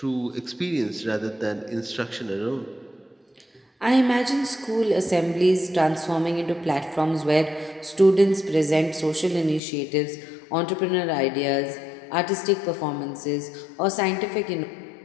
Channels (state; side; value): drops out; right; at 9.6 s